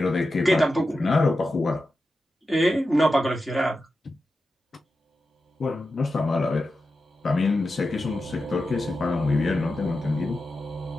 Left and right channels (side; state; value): both; normal; correlation 0.91